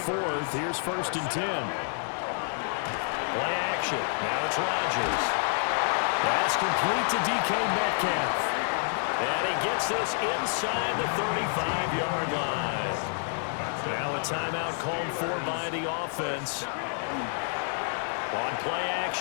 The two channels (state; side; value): silent; right; 59 dB below the other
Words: here's 1st and 10. Play action. Now it's Rodgers. That's complete to DK Metcalf. And he gets this inside the 35-yard line. Now a timeout called for by the offense. On play